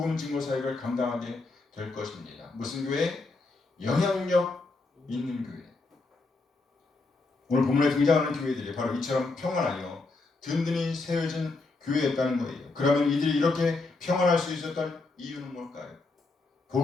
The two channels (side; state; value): right; quieter; 3.6 dB